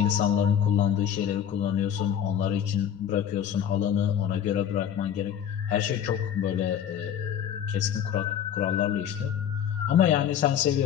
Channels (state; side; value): quieter; right; 9.2 dB